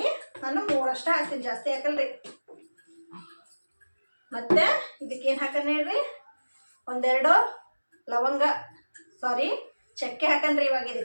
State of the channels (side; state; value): both; inverted; correlation -1.00